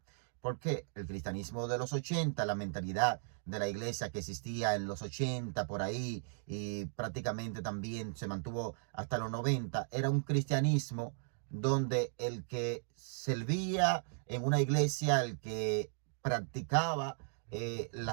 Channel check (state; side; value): silent; left; digital silence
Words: Porque el cristianismo de los 80, la mentalidad de la iglesia que existía en los 80 por ahí y prácticamente también se mantuvo hasta los 90, era un cristianismo donde el que servía en una iglesia, el que practicaba